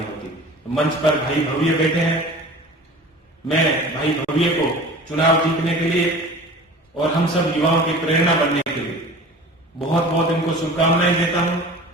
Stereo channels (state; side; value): normal; both; correlation 0.40